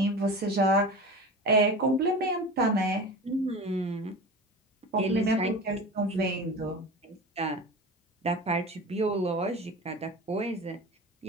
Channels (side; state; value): both; normal; correlation 0.32